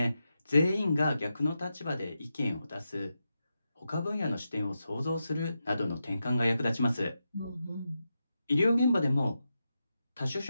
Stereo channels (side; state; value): both; inverted; correlation -0.88